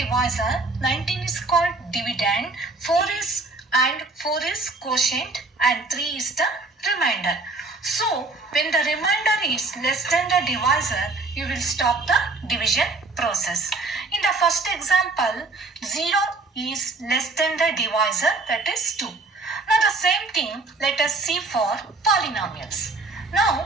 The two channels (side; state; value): left; quieter; 3.4 dB